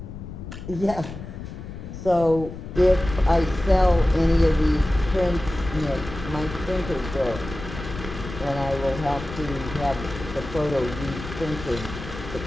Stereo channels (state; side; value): noise; left; rumble, 10 dB below the sound